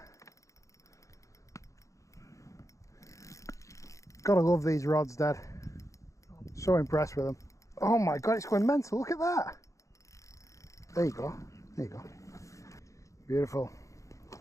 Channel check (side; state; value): right; late; 0.15 ms